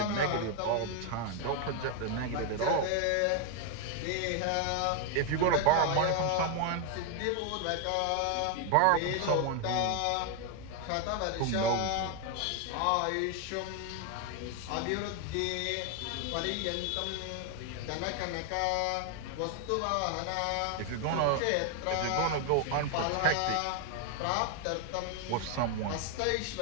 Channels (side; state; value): both; different; correlation 0.01